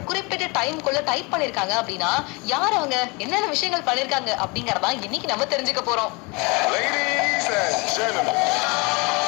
குறிப்பிட்ட டைம்குள்ள டைப் பண்ணிருக்காங்க அப்படின்னா யார் அவங்க என்னென்ன விஷயங்கள் பண்ணிருக்காங்க அப்படிங்கறதா இன்னைக்கு நம்ம தெரிஞ்சுக்க போறோம். Ladies and gentlemen,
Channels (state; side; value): quieter; right; 28.3 dB